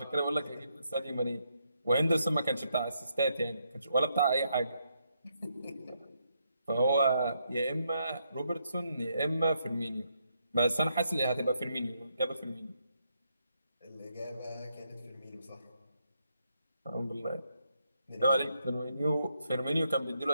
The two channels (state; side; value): inverted; both; correlation -0.78